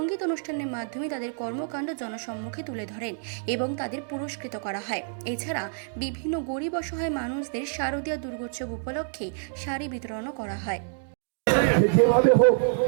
অনুষ্ঠানের মাধ্যমে তাদের কর্মকাণ্ড জনসম্মুখে তুলে ধরেন এবং তাদের পুরস্কৃত করা হয়। এছাড়া বিভিন্ন গরিব অসহায় মানুষদের শারদীয়া দুর্গোৎসব উপলক্ষে শাড়ি বিতরণও করা হয়।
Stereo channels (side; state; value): left; silent; digital silence